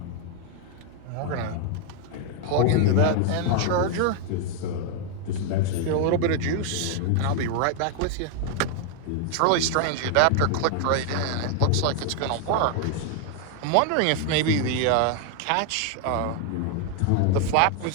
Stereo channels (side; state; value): both; different; correlation 0.00